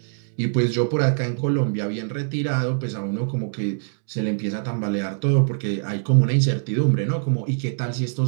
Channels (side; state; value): left; silent; digital silence